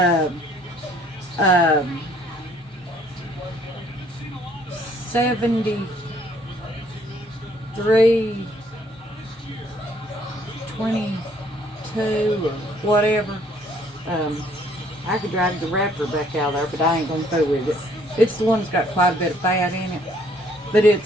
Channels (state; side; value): normal; both; correlation 0.63